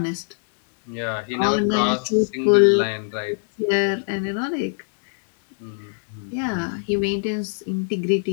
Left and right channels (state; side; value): silent; right; digital silence